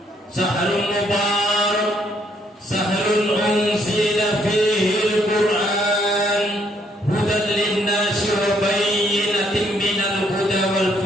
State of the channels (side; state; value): both; normal; correlation 0.69